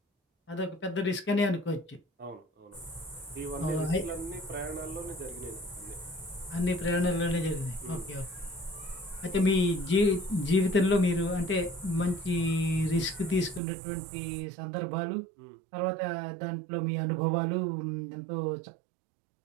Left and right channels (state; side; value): drops out; left; at 13.6 s